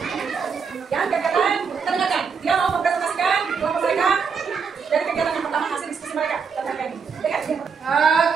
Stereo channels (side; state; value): left; quieter; 5.9 dB